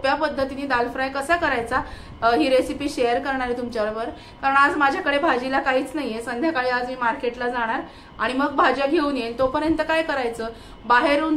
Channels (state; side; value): identical; both; correlation 1.00